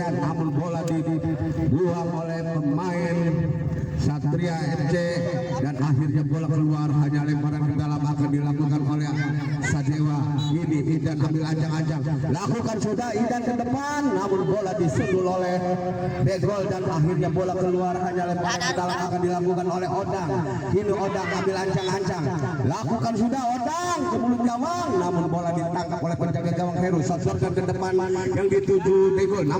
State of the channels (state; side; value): identical; both; correlation 1.00